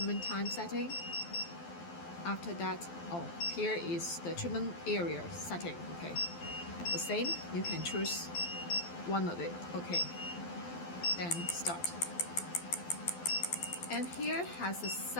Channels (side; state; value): right; late; 12 ms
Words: time setting. After that, here is the treatment area setting. Okay, the same, you can choose one of it. Okay, then start. And here has a